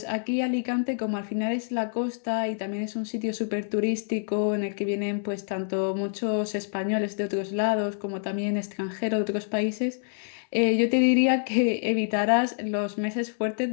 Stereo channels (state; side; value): silent; right; digital silence